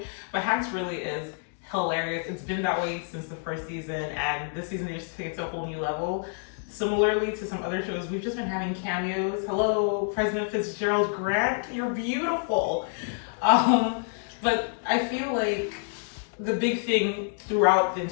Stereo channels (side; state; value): right; silent; 60 dB below the other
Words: But Hacks really is hilarious. It's been that way since the first season, and this season they just take it to a whole new level. Similarly to some other shows, we've just been having cameos. Hello, President Fitzgerald Grant, you're beautiful. But I feel like the big thing throughout the